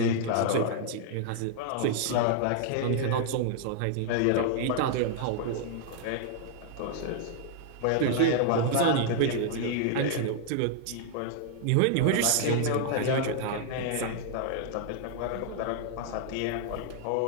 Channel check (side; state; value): both; different; correlation -0.01